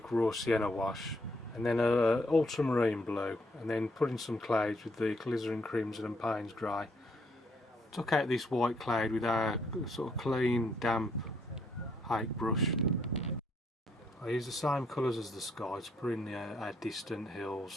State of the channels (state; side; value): normal; both; correlation 0.71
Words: raw sienna wash, and then a ultramarine blue, and then put in some clouds with the alizarin crimson and Payne's grey. Took out this white cloud with our sort of clean, damp hake brush. I used the same colours as the sky to put in our distant